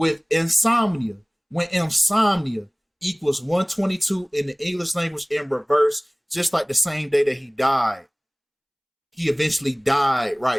insomnia. When insomnia equals 122 in the English language in reverse, just like the same day that he died. He eventually died,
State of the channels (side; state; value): both; identical; correlation 1.00